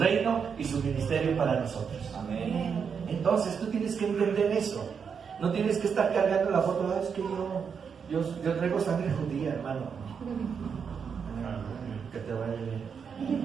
y su ministerio para nosotros. Amén. Entonces tú tienes que entender eso. No tienes que estar cargando la foto. Es que yo traigo sangre judía, hermano. Que te vaya bien.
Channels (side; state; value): left; quieter; 6.5 dB